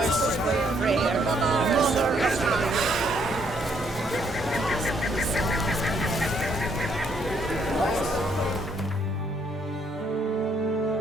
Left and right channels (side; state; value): both; normal; correlation 0.70